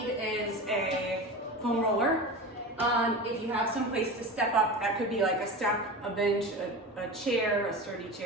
is a foam roller. If you have some place to step up, that could be like a step, a bench, a chair, a sturdy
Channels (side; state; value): both; normal; correlation 0.29